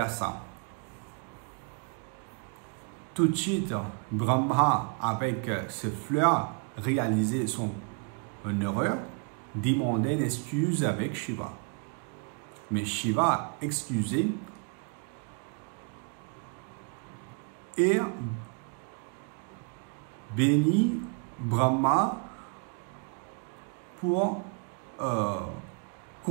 ça. Tout de suite, Brahma, avec ces fleurs, réalisait son erreur, demandait une excuse avec Shiva. Mais Shiva excusait et bénit Brahma pour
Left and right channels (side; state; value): left; quieter; 37.3 dB